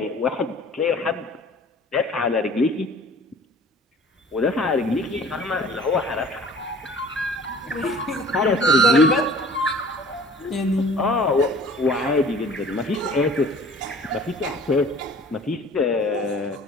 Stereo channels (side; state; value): both; normal; correlation 0.48